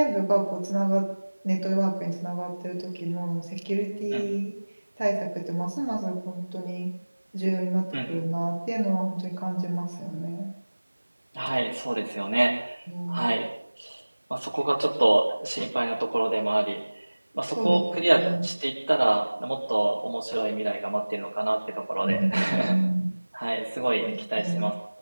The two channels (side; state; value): both; inverted; correlation -1.00